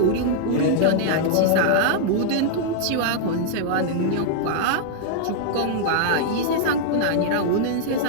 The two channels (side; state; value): both; different; correlation -0.01